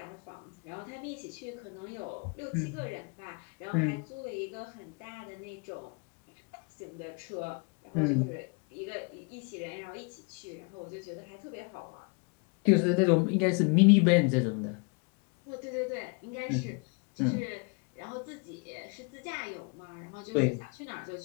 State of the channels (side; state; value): right; quieter; 34.3 dB